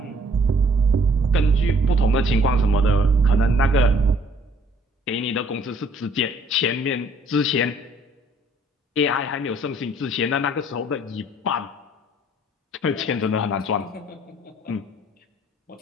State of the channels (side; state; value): both; normal; correlation 0.61